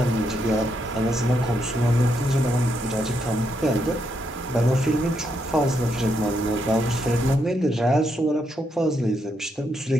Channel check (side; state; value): both; normal; correlation 0.79